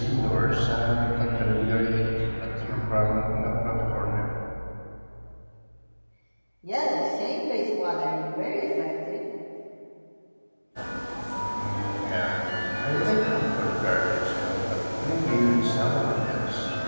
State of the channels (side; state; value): both; inverted; correlation -1.00